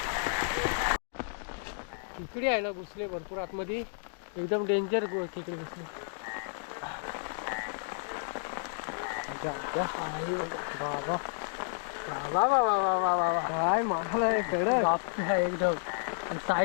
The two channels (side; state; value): right; silent; digital silence